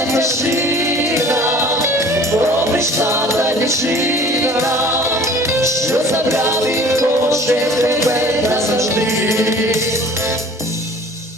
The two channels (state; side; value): normal; both; correlation 0.47